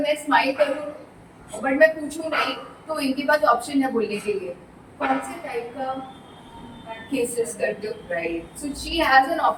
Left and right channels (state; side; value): identical; both; correlation 1.00